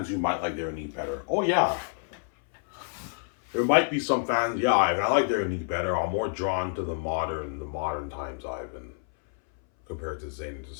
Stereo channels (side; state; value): right; silent; 59 dB below the other